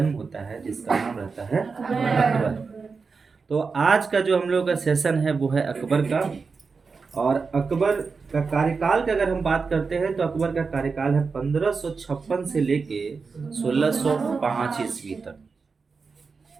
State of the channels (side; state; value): left; quieter; 4.8 dB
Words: होता है, जिसका नाम रहता है अकबर। तो आज का जो हम लोग का सेशन है वो है अकबर का। और अकबर का कार्यकाल का अगर हम बात करते हैं, तो अकबर का कार्यकाल है 1556 से लेके 1605 ईस्वी तक।